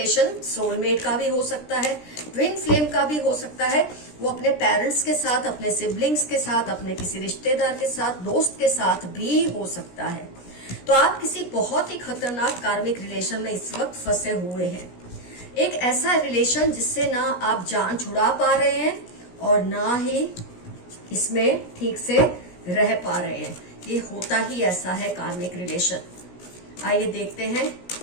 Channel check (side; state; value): right; late; 17 ms